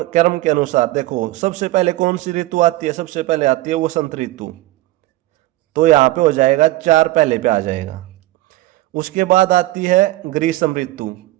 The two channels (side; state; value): left; quieter; 17.5 dB